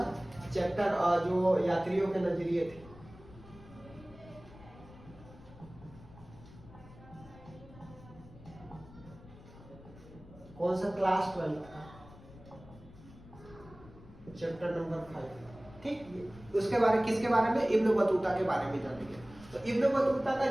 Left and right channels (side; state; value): left; noise; rumble, 20 dB below the sound